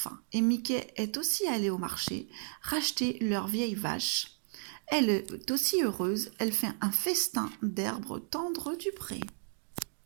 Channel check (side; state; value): left; silent; digital silence